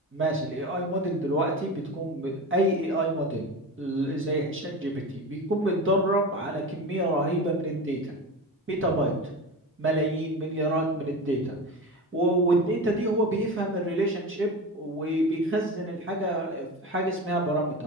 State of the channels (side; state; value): both; normal; correlation 0.27